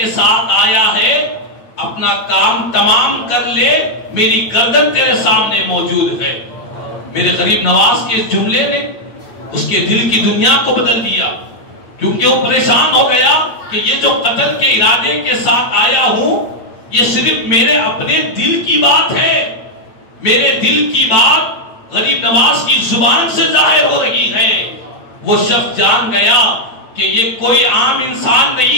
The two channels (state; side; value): late; right; 8.7 ms